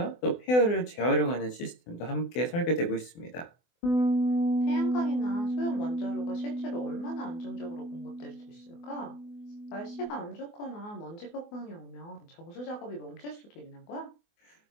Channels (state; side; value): late; right; 24 ms